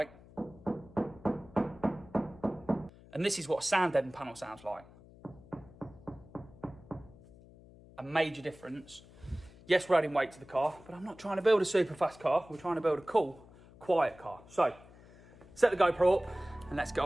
And this is what a sound deadened panel sounds like. A major difference. Yes, we're adding weight to the car, but I'm not trying to build a super fast car. We're trying to build a cool, quiet car. So set the GoPro up and let's get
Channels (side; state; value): left; noise; hum, 22 dB below the sound